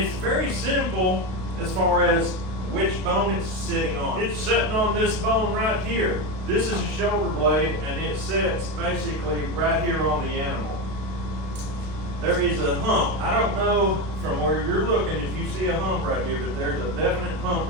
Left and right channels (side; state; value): left; late; 32 ms